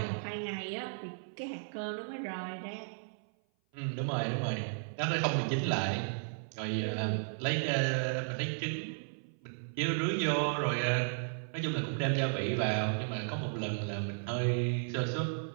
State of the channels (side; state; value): left; silent; 55 dB below the other